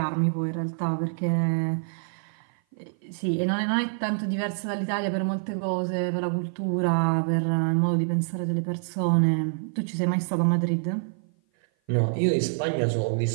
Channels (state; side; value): silent; left; 55 dB below the other